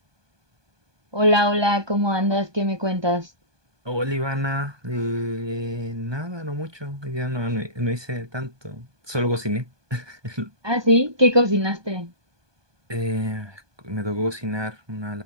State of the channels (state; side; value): late; left; 1.2 ms